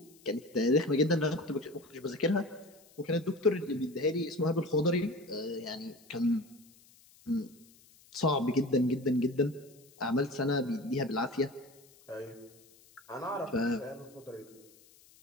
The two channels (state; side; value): noise; left; hiss, 27 dB below the sound